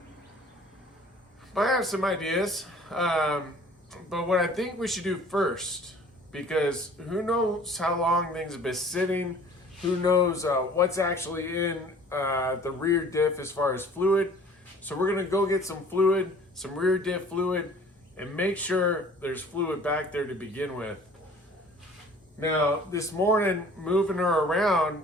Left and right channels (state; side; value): normal; both; correlation 0.50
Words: I have some ideas, but what I think we should do first, because who knows how long things have been sitting, who knows what's actually in the rear diff as far as fluid. So we're gonna go get some fluid, some rear diff fluid, and make sure there's fluid back there to begin with. Now, this morning, moving her around,